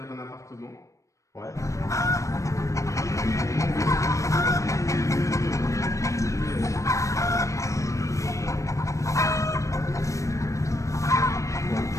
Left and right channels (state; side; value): late; right; 0.15 ms